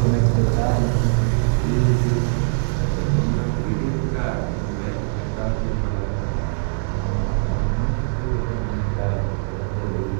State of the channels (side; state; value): left; silent; 64 dB below the other